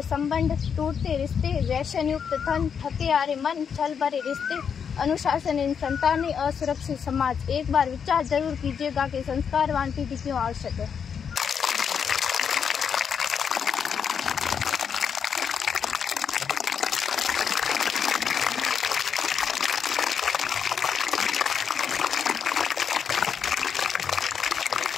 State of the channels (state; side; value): quieter; right; 7.1 dB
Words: संबंध, टूटते रिश्ते, व्यसन युक्त धन, थके हारे मन, छल भरे रिश्ते, अनुशासनहीन संतानें, असुरक्षित समाज। एक बार विचार जरूर कीजिएगा कि संस्कारवान पीढ़ी क्यों आवश्यक है।